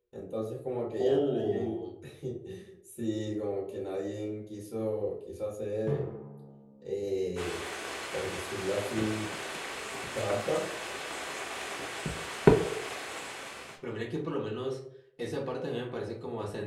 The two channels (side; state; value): both; identical; correlation 1.00